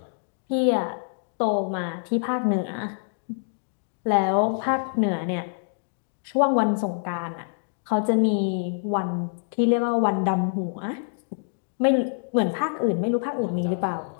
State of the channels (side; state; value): right; silent; digital silence